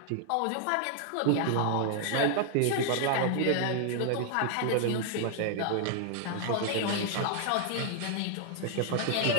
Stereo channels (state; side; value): different; both; correlation 0.00